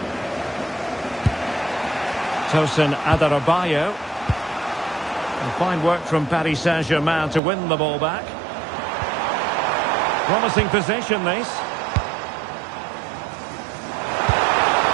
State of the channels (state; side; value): drops out; left; at 7.4 s